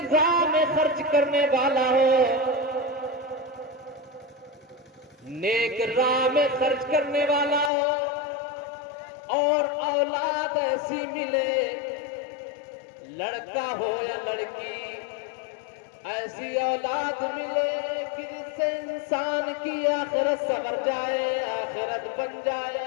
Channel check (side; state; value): right; drops out; at 7.7 s